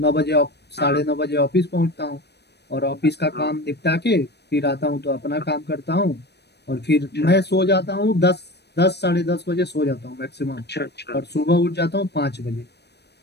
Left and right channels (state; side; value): late; right; 0.49 ms